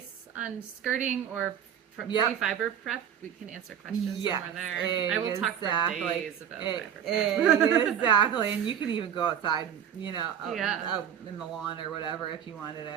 on skirting or pre-fiber prep, we can answer questions somewhere there. I will talk for days about fiber prep. Exactly, and you can even go outside, out in the lawn or whatever if you wanted.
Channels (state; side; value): quieter; left; 9.1 dB